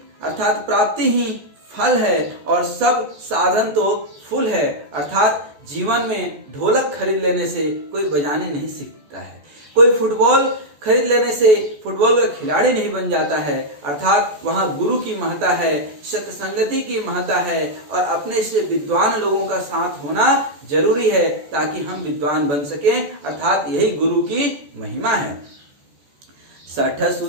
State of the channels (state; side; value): late; left; 14 ms